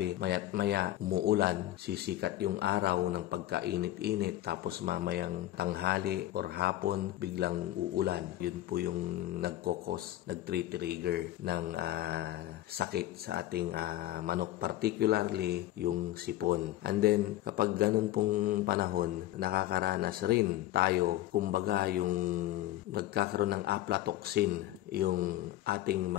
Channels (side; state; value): right; quieter; 14.8 dB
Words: maya't maya umuulan, sisikat yung araw ng pagkainit-init, tapos mamayang tanghali or hapon, biglang uulan. Yun po yung nag-trigger ng sakit sa ating manok, particularly yung sipon. And then, kapag ganun pong panahon, nakakaranas rin tayo, kumbaga yung nagkakaroon ng aflatoxin yung ating